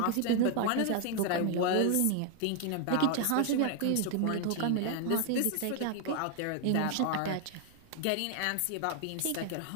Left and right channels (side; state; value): both; different; correlation 0.00